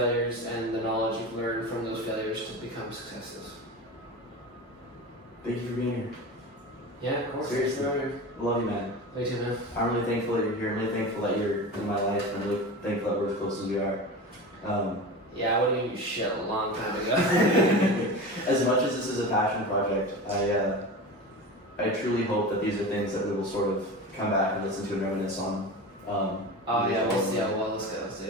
and the knowledge you've learned from those failures to become successes. Thank you for being here. Yeah, of course. Seriously. I love you, man. Me too, man. I'm really thankful that you're here. I'm really thankful that you're in my life. I'm really thankful that we're as close as we are. Yeah, I would have given you shit a long time ago. As much as this is a passion project, I truly hope that these are things that we will sort of come back and listen to and reminisce on. We'll see how well this goes,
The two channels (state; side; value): normal; both; correlation 0.29